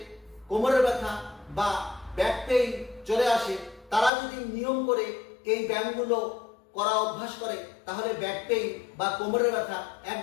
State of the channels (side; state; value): right; drops out; at 4.1 s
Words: কোমরের ব্যথা বা ব্যাক পেইন চলে আসে তারা যদি নিয়ম করে এই ব্যায়ামগুলো করা অভ্যাস করে তাহলে ব্যাক পেইন বা কোমরের ব্যথা